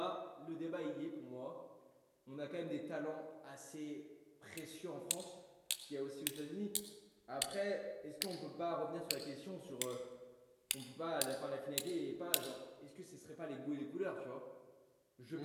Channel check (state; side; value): identical; both; correlation 1.00